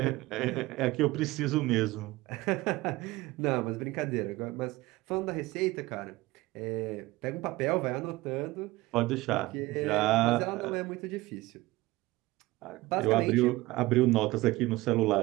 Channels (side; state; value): left; quieter; 19.6 dB